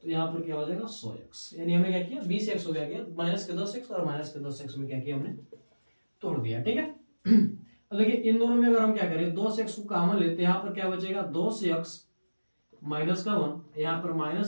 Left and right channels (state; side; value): inverted; both; correlation -1.00